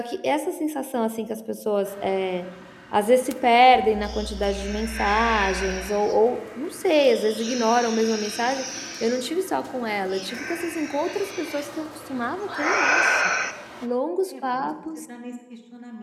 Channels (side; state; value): both; identical; correlation 1.00